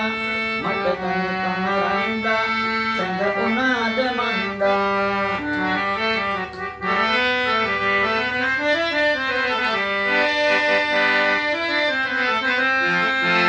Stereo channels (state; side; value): identical; both; correlation 1.00